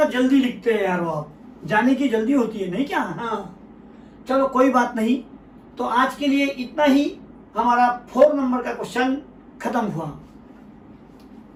जल्दी लिखते हैं यार, वो आप जाने की जल्दी होती है नहीं क्या। हाँ चलो कोई बात नहीं, तो आज के लिए इतना ही, हमारा 4 नंबर का क्वेश्चन खत्म हुआ।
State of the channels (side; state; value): both; identical; correlation 1.00